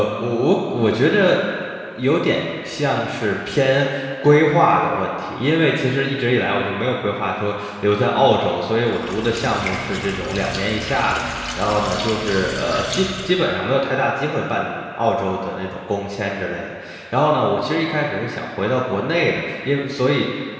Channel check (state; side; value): identical; both; correlation 1.00